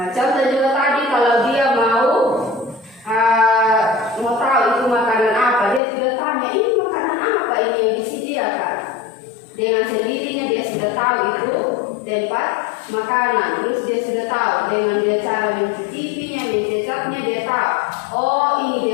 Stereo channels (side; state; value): right; drops out; at 5.8 s